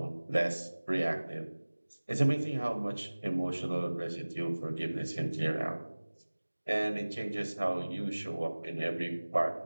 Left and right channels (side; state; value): both; inverted; correlation -1.00